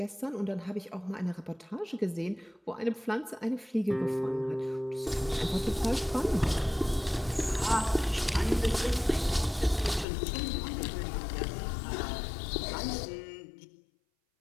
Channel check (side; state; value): right; drops out; at 10.1 s